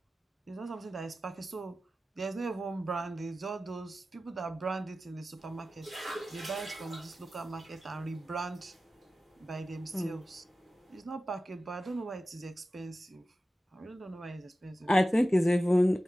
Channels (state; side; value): normal; both; correlation 0.95